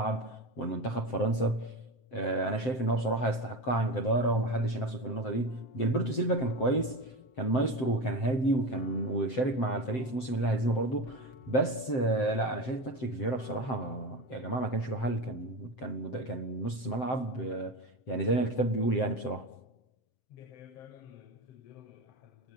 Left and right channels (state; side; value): late; right; 7.7 ms